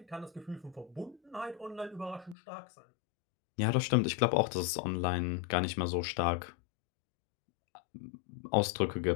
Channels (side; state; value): right; drops out; at 2.4 s